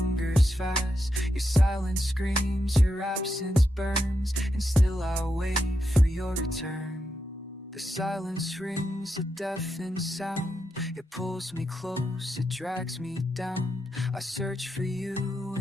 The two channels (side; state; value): both; normal; correlation 0.85